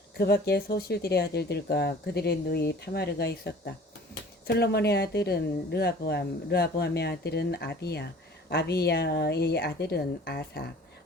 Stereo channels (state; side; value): normal; both; correlation 0.47